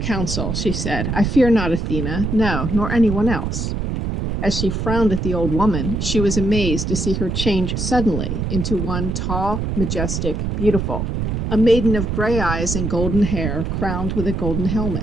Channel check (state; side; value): noise; right; rumble, 2 dB below the sound